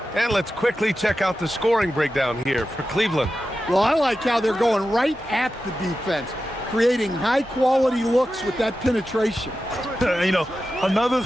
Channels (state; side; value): normal; both; correlation 0.92